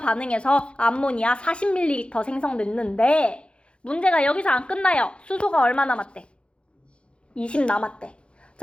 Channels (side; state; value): right; late; 0.057 ms